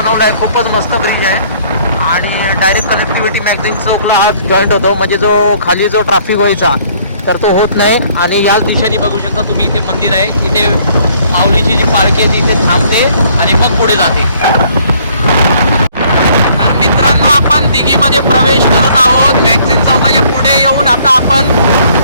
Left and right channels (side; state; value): both; inverted; correlation -0.61